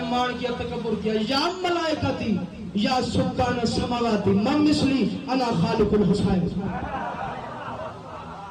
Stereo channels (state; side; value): identical; both; correlation 1.00